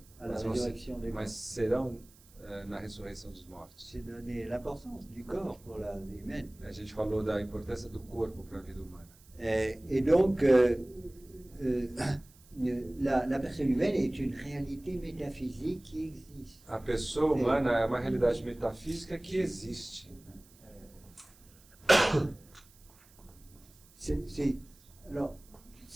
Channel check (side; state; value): right; noise; hiss, 27 dB below the sound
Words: à la résurrection des morts. mas serão na ressurreição dos mortos. C'est donner l'importance du corps pour la vie humaine. A gente falou da importância do corpo para a vida humana. Et donc, la personne humaine est une réalité métaphysique qui existe. A pessoa humana é uma realidade metafísica que existe. Alors,